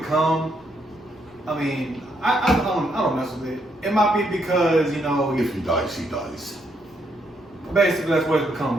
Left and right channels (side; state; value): both; normal; correlation 0.75